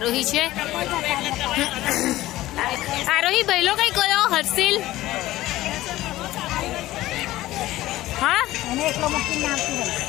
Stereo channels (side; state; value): right; quieter; 16.2 dB